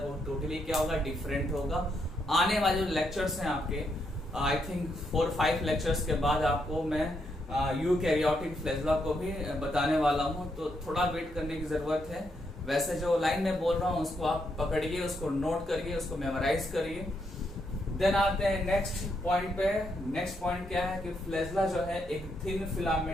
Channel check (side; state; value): both; normal; correlation 0.78